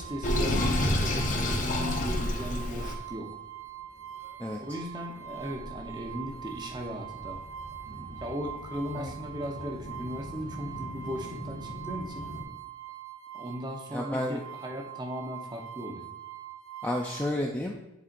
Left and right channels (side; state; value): both; normal; correlation 0.65